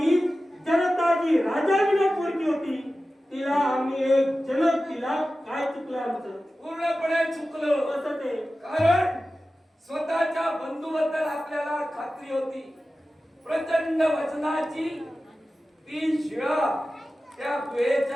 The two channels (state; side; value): normal; both; correlation 0.94